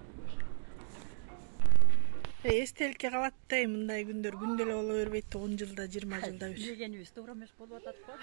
Эстеликке калат да, мындай күндөр күндө эле боло бербейт, 10 жылда, 20 жылда бир. Дегенибиз туура эмес болуп атат го.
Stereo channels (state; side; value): silent; left; digital silence